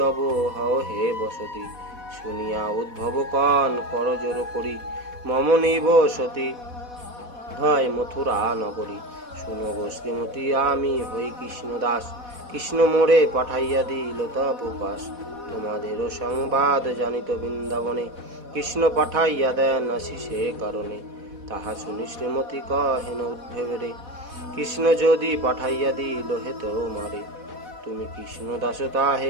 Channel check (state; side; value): late; left; 4.1 ms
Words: হও হে বসতি, শুনিয়া উদ্ভব কন কর জোর করি, মম নিব সতী হয় মথুরা নগরী, শুনো গো শ্রীমতী আমি হই কৃষ্ণ দাস, কৃষ্ণ মোরে পাঠাইয়া দিল তব পাশ, তোমাদেরও সংবাদ জানিত বৃন্দাবনে, কৃষ্ণ পাঠাইয়া দেন আশিসে কারণে, তাহা শুনি শ্রীমতী কহেন উদ্ভবেরে, কৃষ্ণ যদি পাঠাইয়া দিল হে তোমারে, তুমি কৃষ্ণ দাস